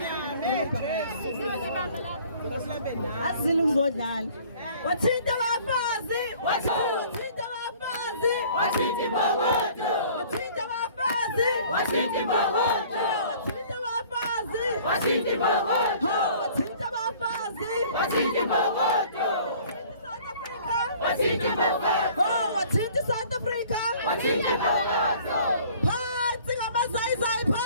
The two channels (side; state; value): both; inverted; correlation -0.52